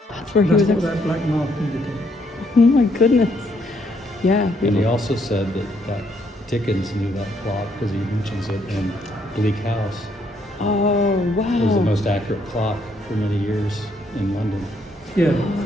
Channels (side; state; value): both; normal; correlation 0.71